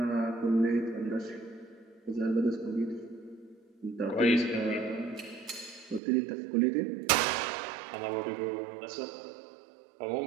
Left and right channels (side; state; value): left; drops out; at 6.0 s